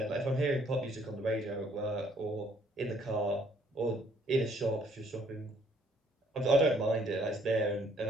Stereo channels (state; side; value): normal; both; correlation 0.64